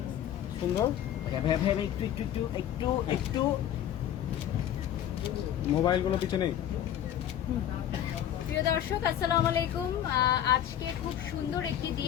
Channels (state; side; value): quieter; right; 10.8 dB